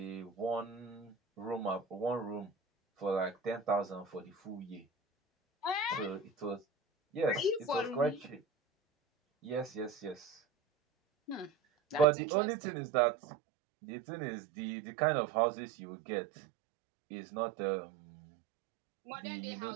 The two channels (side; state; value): left; drops out; at 12.1 s